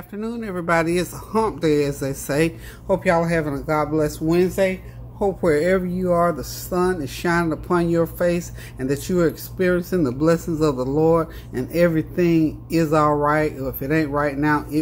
everybody. It's a hump day, as they say. Hope y'all are having a God bless Wednesday. Hope wherever you are, the sun is shining upon your face and that you are experiencing the blessings of the Lord and everything is all right. Or if it ain't right now,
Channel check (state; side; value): identical; both; correlation 1.00